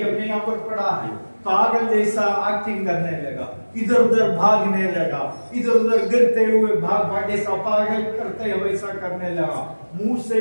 अपने यहाँ पर पड़ा है, पागल जैसा एक्टिंग करने लगा, इधर उधर भागने लगा, इधर उधर गिरते हुए भाग जैसा पागल करते हुए वैसा करने लगा, मुंह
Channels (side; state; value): both; inverted; correlation -1.00